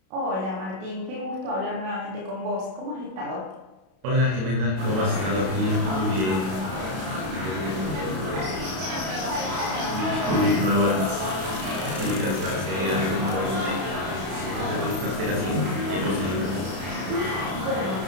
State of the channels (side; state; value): left; late; 32 ms